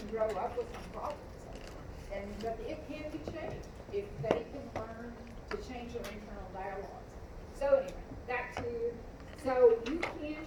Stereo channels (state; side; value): identical; both; correlation 1.00